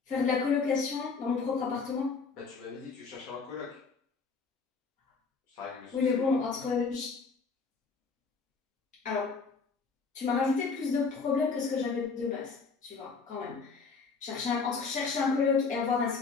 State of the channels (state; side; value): quieter; right; 4.8 dB